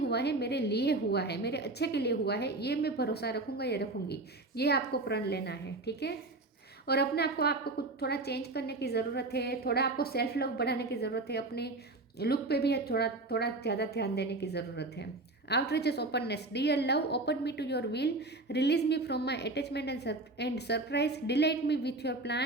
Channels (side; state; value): left; quieter; 3.0 dB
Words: है, मेरे लिए हुआ है, मेरे अच्छे के लिए हुआ है, ये मैं भरोसा रखूँगा या रखूँगी। ये आपको प्रण लेना है, ठीक है। और अपने आपको कुछ थोड़ा चेंज करने की ज़रूरत है, थोड़ा आपको सेल्फ लव बढ़ाने की ज़रूरत है, अपने लुक पे भी थोड़ा थोड़ा ज़्यादा ध्यान देने की ज़रूरत है। Outreaches, openness, dear love, open me to your will, release me from my attachment and surprise, delight me with your